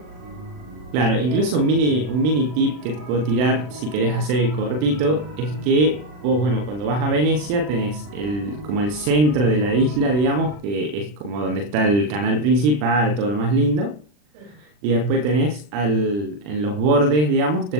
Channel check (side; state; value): left; late; 40 ms